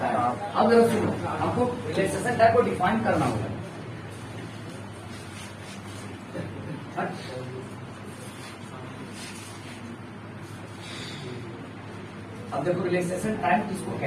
टाइम। अब जरा सुनो, हमको रिलैक्सेशन टाइम को डिफाइन करना होगा। अब देखो रिलैक्सेशन टाइम किसको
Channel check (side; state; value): both; identical; correlation 1.00